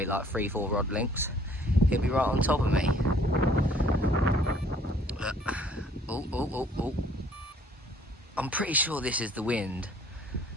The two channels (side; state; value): both; normal; correlation 0.58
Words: like 3-4 rod lengths, he'll be right on top of me. Oh. I'm pretty sure this is the wind